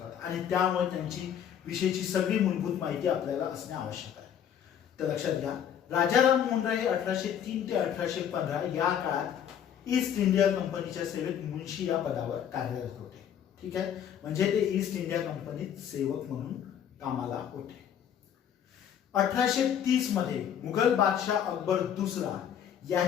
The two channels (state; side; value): quieter; right; 9.1 dB